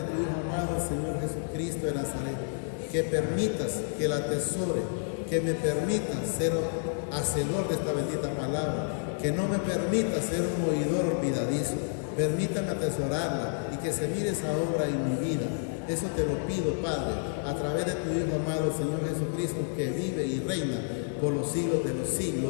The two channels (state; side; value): silent; right; digital silence